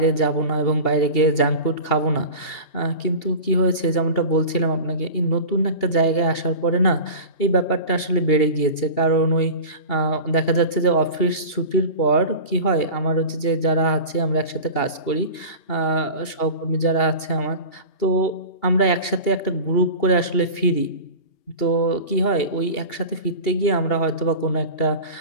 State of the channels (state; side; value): late; right; 2.8 ms